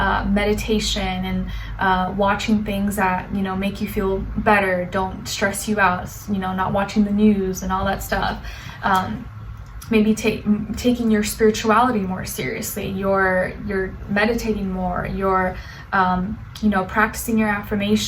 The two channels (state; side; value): identical; both; correlation 1.00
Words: meditation, and watching things that make you feel better, don't stress you out, not watching the news and all that stuff. Maybe taking your spirituality more seriously, you're meditating more, you're practicing your